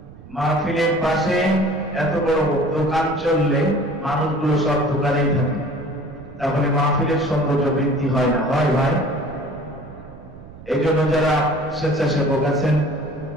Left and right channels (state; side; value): noise; right; rumble, 19 dB below the sound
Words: মাহফিলের পাশে এত বড় দোকান চললে মানুষগুলো সব দোকানেই থাকে, তাহলে মাহফিলের সৌন্দর্য বৃদ্ধি হয় না, হয় ভাই? এই জন্য যারা স্বেচ্ছাসেবক আছেন,